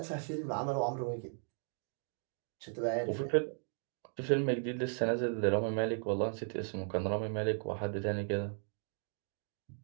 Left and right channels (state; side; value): silent; left; 53 dB below the other